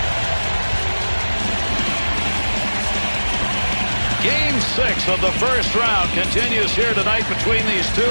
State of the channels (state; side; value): inverted; both; correlation -1.00